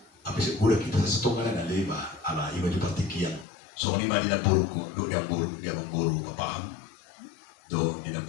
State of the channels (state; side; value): drops out; right; at 3.5 s